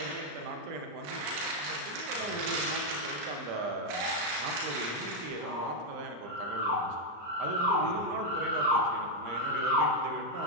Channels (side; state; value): left; late; 34 ms